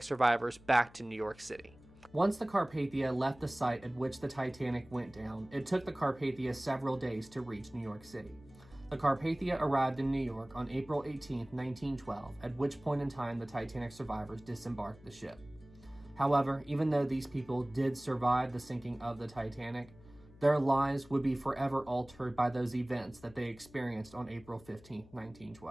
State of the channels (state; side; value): noise; left; hum, 23 dB below the sound